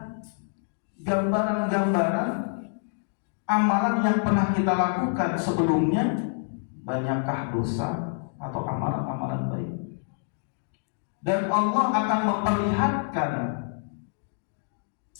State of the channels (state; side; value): silent; right; digital silence